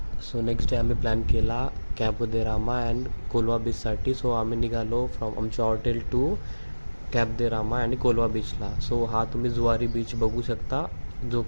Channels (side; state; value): both; inverted; correlation -1.00